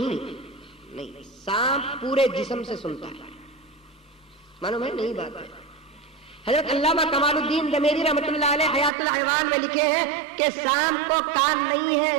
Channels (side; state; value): left; drops out; at 8.9 s